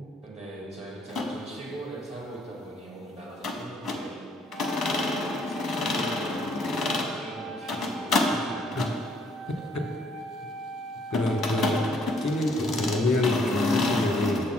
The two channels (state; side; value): normal; both; correlation 0.66